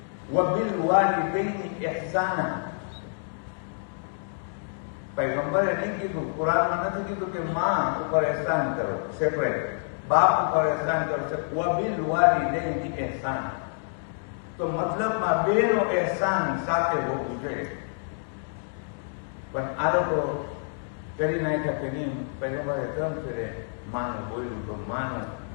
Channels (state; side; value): silent; right; digital silence